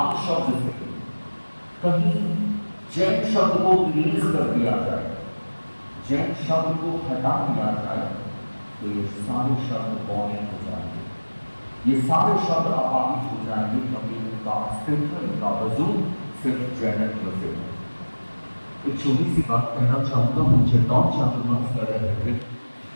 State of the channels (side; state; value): both; inverted; correlation -1.00